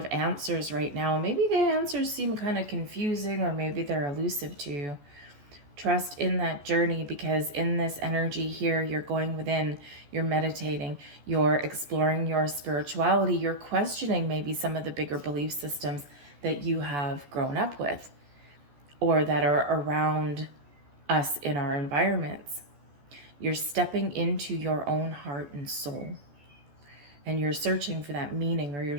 answers right now. Maybe the answers seem kind of confusing, or maybe they're elusive to you. Trust in that journey, because in this energy here, you're going within, you're meditating, you're exploring your spirituality, you're questioning maybe some of the bigger belief systems that you have grown up with or that are around us in our environments. You're stepping into your own heart and soul, and you're searching for that meaning, or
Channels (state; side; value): late; left; 14 ms